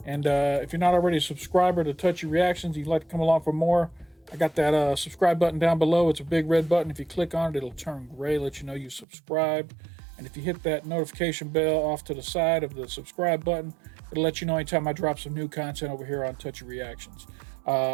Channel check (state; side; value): drops out; left; at 9.1 s